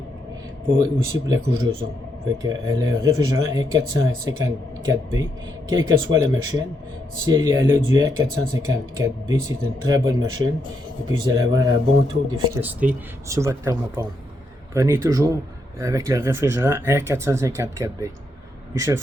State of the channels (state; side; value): normal; both; correlation 0.79